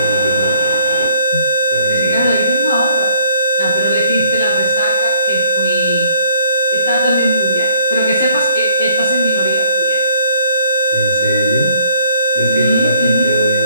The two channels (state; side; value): inverted; both; correlation -0.64